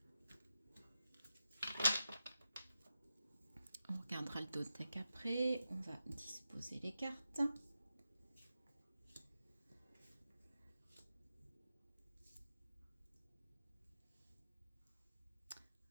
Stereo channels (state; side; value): inverted; both; correlation -0.90